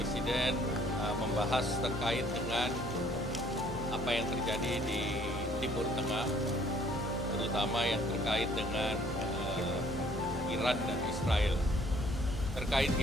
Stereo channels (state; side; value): normal; both; correlation 0.60